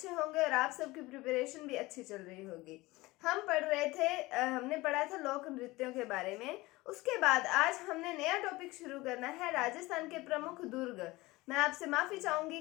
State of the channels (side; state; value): right; quieter; 20.6 dB